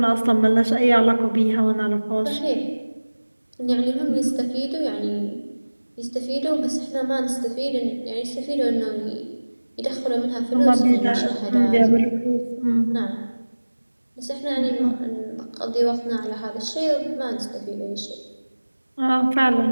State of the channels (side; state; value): both; inverted; correlation -1.00